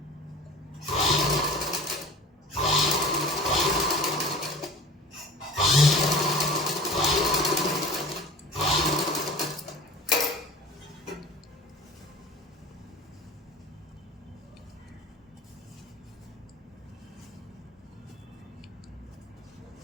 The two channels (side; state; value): both; normal; correlation 0.39